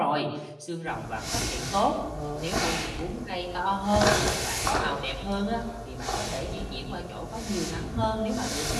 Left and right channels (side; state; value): both; identical; correlation 1.00